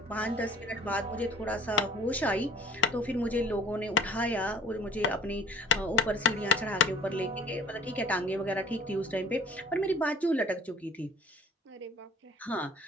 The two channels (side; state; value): both; normal; correlation 0.48